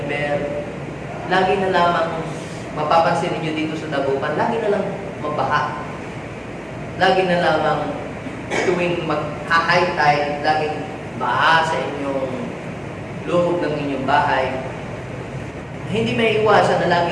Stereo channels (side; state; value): both; identical; correlation 1.00